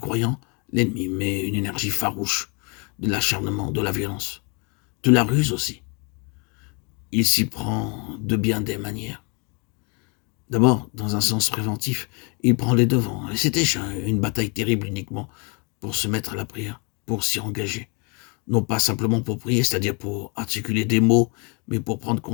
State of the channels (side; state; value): right; quieter; 33.2 dB